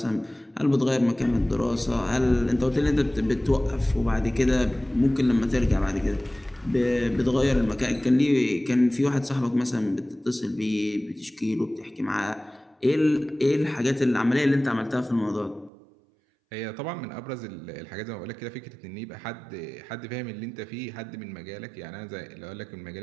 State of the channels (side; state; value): left; drops out; at 15.7 s